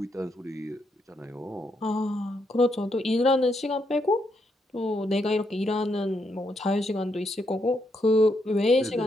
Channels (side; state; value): both; normal; correlation 0.78